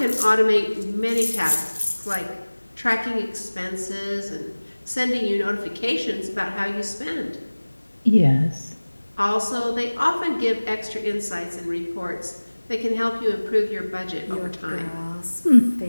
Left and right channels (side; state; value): both; inverted; correlation -1.00